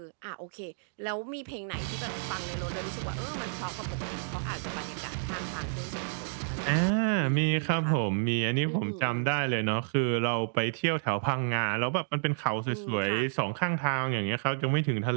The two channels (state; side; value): silent; left; digital silence